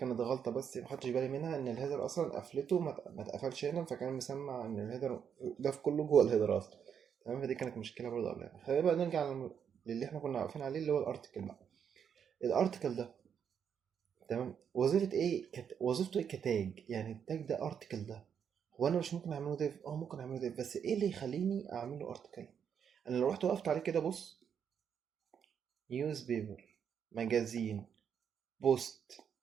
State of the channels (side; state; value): left; quieter; 7.7 dB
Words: غلطه بس ما خدتش بالي منها، ان الهيدر اصلا قفلته ما اتقفلش هنا، فكان مسمع ان الهيدر ده في كله جوه الهيدر اصلا. تمام، فدي كانت مشكله برضه قبلها. خلينا بقى نرجع للي احنا كنا واقفين عليه، اللي هو الارتكل بقى. الارتكل ده، تمام. وظيفة ايه وظيفته ايه كتاج؟ يعني التاج ده ارتكل ده، هو انا مش ممكن اعمله ديف؟ ممكن اعمله ديف، بس ايه اللي يخليني اعمله ارتكل؟ انا لو رحت وقفت عليه كده، بص، نيوز بيبر، ماجازين، بوست،